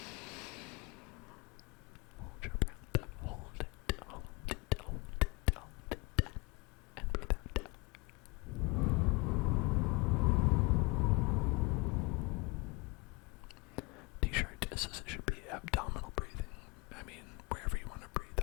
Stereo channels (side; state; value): right; quieter; 26.7 dB